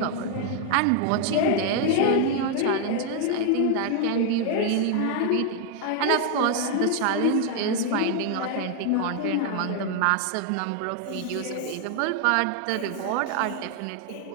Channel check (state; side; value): different; both; correlation 0.00